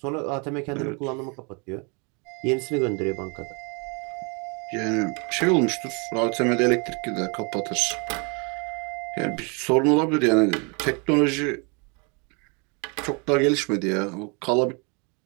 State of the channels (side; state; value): left; quieter; 33.2 dB